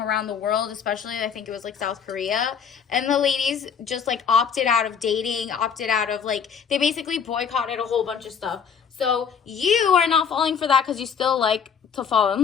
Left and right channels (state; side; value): quieter; right; 7.0 dB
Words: the world, especially I think it was like South Korea, and the ladies just like opted out of dating, opted out of, like, they basically boycotted a whole bunch of stuff. So you are not falling for that because you still like to fall